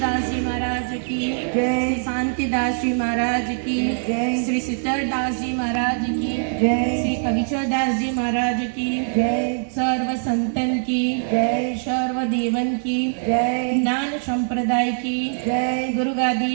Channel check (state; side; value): silent; left; digital silence